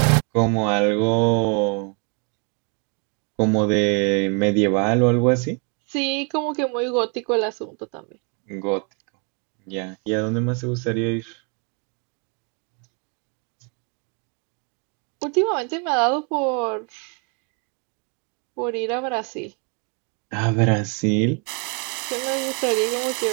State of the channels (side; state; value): left; quieter; 36.8 dB